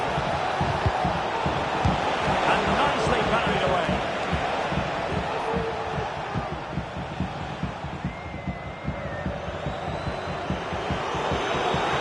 And nicely parried away.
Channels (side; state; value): both; identical; correlation 1.00